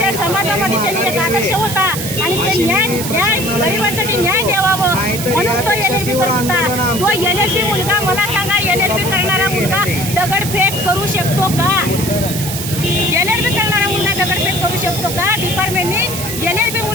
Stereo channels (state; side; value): noise; right; hiss, 6 dB below the sound